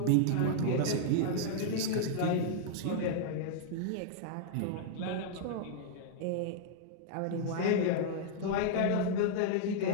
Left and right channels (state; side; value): different; both; correlation -0.01